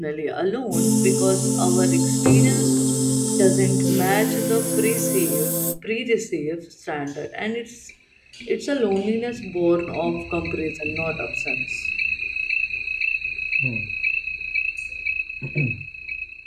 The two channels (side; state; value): both; identical; correlation 1.00